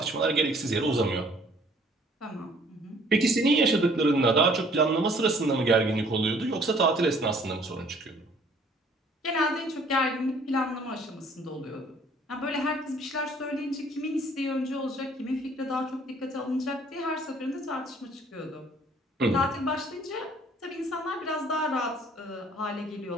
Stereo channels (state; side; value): normal; both; correlation 0.57